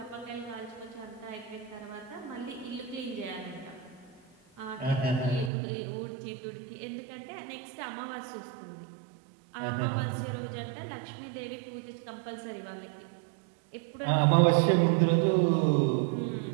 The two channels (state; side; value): drops out; left; at 5.5 s